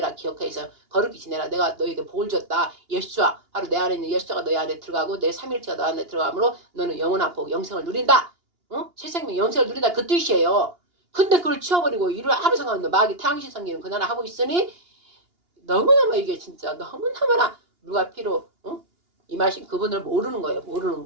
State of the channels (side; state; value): left; late; 2.8 ms